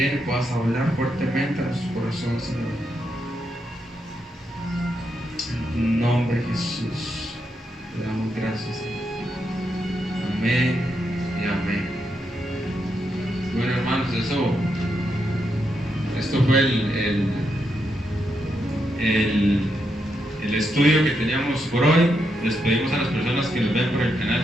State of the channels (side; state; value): both; normal; correlation 0.82